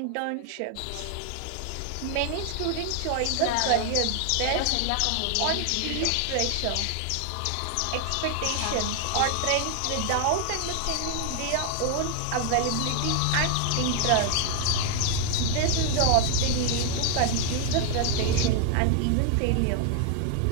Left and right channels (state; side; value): different; both; correlation 0.00